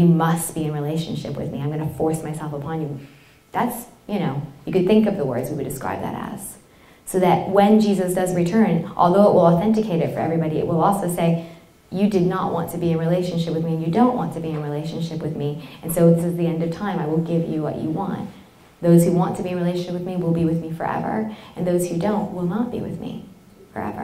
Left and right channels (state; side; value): identical; both; correlation 1.00